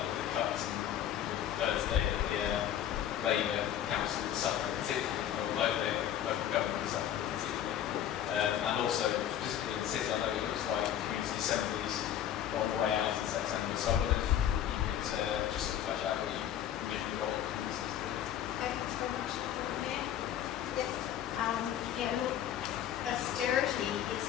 the cuts and with today that the Labour council is suffering particularly, or local government is suffering particularly. And also, specifically in the city, I know it looks like community assemblies are on the way out in September, so I wonder if you could just sort of flesh out what you envision the role of communities to do. Thanks very much. Yes. Yeah, look, austerity is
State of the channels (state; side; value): quieter; right; 10.6 dB